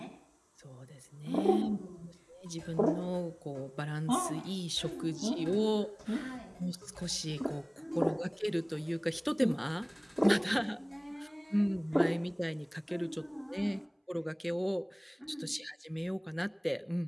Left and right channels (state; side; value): identical; both; correlation 1.00